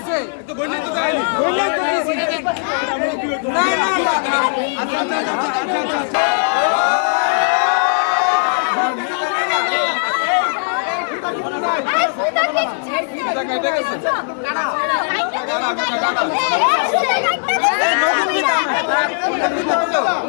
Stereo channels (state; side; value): silent; right; digital silence